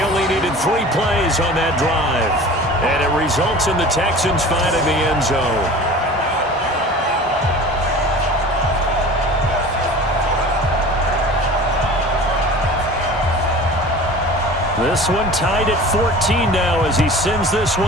only needed 3 plays on that drive. And it results in the Texans finding the end zone. This one tied at 14 now as he sends this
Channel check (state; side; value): normal; both; correlation 0.40